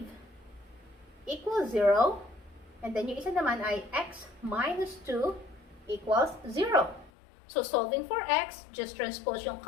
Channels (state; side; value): drops out; right; at 7.1 s